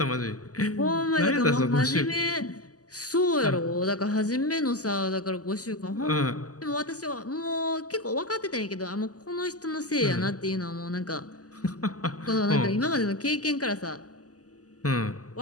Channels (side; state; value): right; late; 0.67 ms